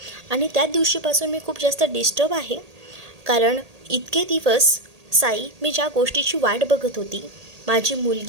आणि त्या दिवशीपासून मी खूप जास्त डिस्टर्ब आहे. कारण इतके दिवस साई मी ज्या गोष्टीची वाट बघत होती, माझी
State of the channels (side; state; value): left; late; 1.8 ms